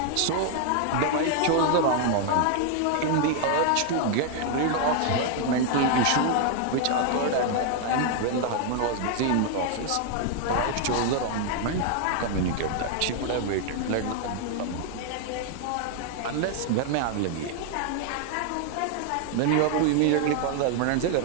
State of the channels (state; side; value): different; both; correlation 0.00